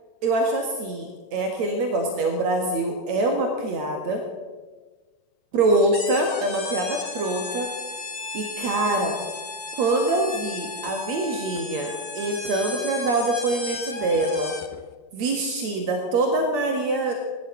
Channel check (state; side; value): late; left; 8.6 ms